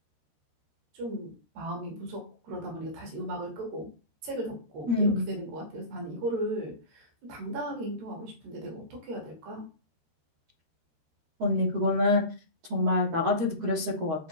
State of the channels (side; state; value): left; late; 13 ms